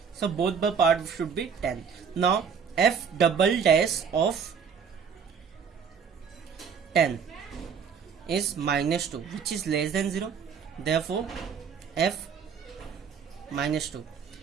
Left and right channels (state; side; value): quieter; left; 6.6 dB